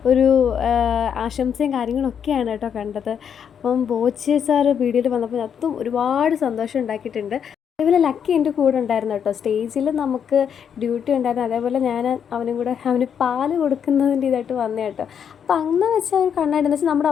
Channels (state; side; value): quieter; right; 7.9 dB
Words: ഒരു ആശംസയും കാര്യങ്ങളൊക്കെയാണ് കേട്ടോ കണ്ടത്. അപ്പം ബോച്ചെ സാറ് വീഡിയോയിൽ വന്നപ്പോൾ അതും ഒരുപാട് സന്തോഷം ഉണ്ടാക്കിയിട്ടുണ്ട്. അതേപോലെ ലക്കി എൻ്റെ കൂടെ ഉണ്ടായിരുന്നു കേട്ടോ. സ്റ്റേജിൽ നമുക്ക് ഡ്യൂട്ടി ഉണ്ടായിരുന്നു. അതേപോലെ ഞാൻ അവന് പാല് കൊടുക്കുന്നതിൻ്റെ ഇതായിട്ട് വന്നേ കേട്ടോ. അപ്പോൾ അങ്ങനെ വെച്ചാൽ ഒരു കണ്ണാടി എന്ന് വെച്ചാൽ നമ്മുടെ